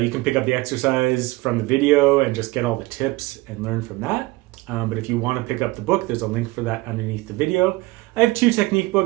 you can pick up the exercise from the video and just get all the tips and learn from that. But if you want to pick up the book, there's a link for that underneath the video. I have two technique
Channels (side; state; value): left; quieter; 21.0 dB